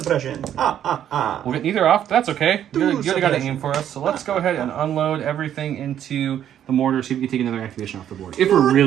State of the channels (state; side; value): quieter; left; 10.3 dB